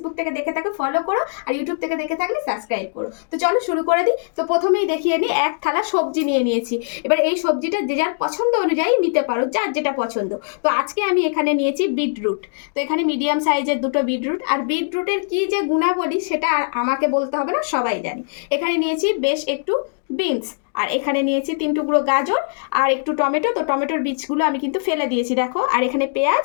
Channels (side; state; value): right; silent; digital silence